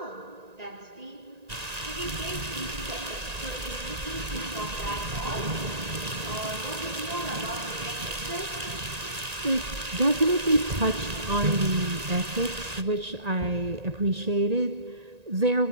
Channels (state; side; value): late; left; 1.9 ms